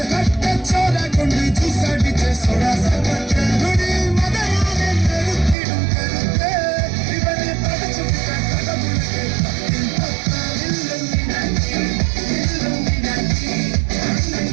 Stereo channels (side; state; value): left; drops out; at 5.6 s